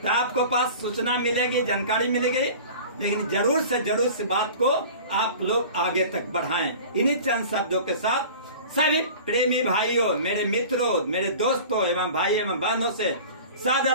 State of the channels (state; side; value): inverted; both; correlation -0.40